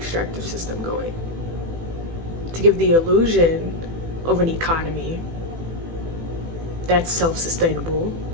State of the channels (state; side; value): late; left; 18 ms